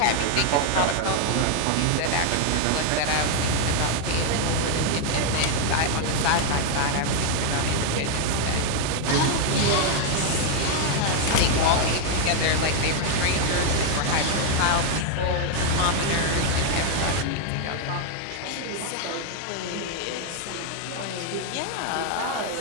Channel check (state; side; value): different; both; correlation 0.00